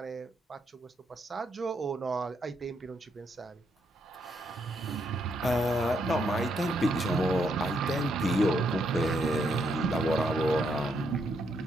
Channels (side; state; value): both; normal; correlation 0.76